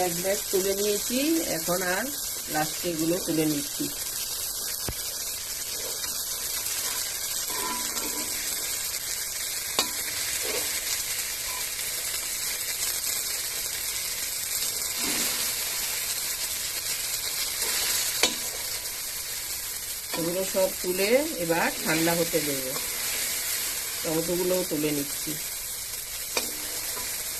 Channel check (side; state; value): right; noise; rumble, 18 dB below the sound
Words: এক ব্যাগ তুলে নিয়েছি, এখন আর লাস্টে এগুলো তুলে নিচ্ছি। এগুলো সব তুলে এবার ঠান্ডা হতে দেব। টমেটোগুলোও তুলে নিচ্ছি।